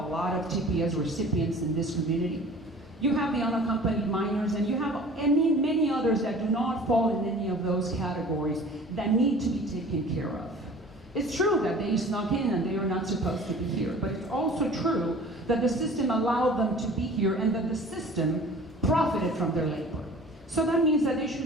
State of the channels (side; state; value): both; normal; correlation 0.45